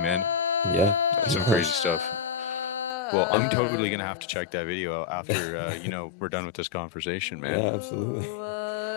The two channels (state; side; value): drops out; right; at 3.0 s